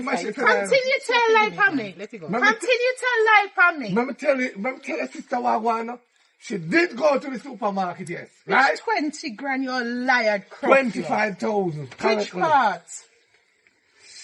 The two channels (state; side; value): identical; both; correlation 1.00